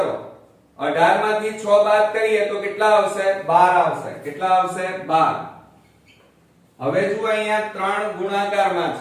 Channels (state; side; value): identical; both; correlation 1.00